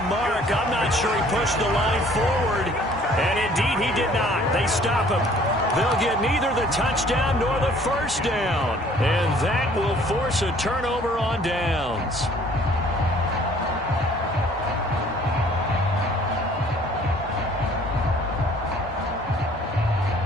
mark. I'm not sure he pushed the line forward. And indeed, he did not. They They stop him. They'll get neither the touchdown nor the first down. And that will force a turnover on downs.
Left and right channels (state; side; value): noise; right; hum, 19 dB below the sound